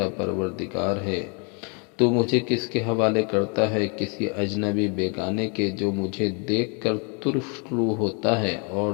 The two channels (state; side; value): quieter; right; 35.0 dB